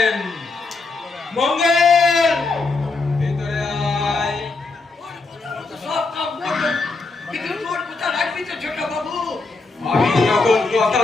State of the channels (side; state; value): right; quieter; 3.8 dB